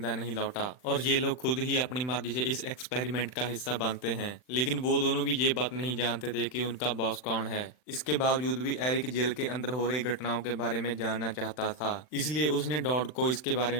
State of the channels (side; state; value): right; late; 39 ms